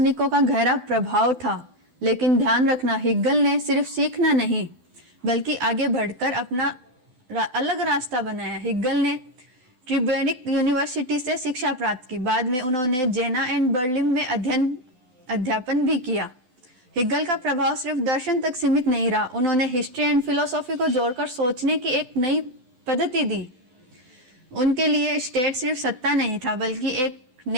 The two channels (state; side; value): late; left; 12 ms